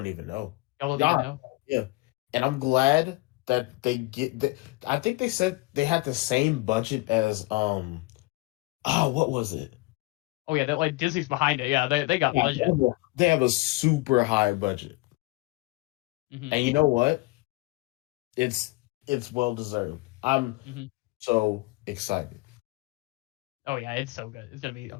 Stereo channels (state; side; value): quieter; right; 23.2 dB